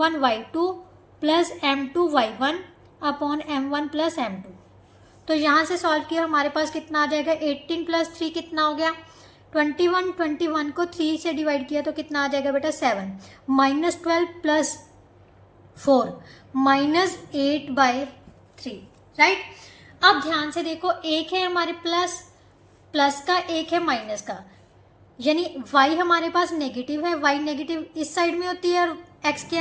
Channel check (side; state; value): both; identical; correlation 1.00